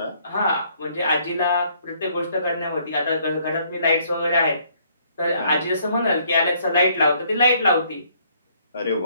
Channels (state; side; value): inverted; both; correlation -0.65